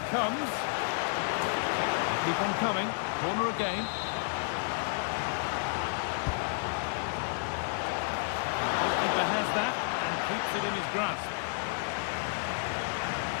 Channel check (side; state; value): right; silent; 57 dB below the other